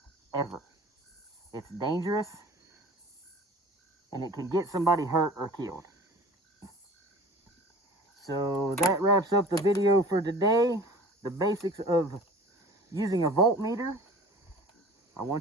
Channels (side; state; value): both; normal; correlation 0.43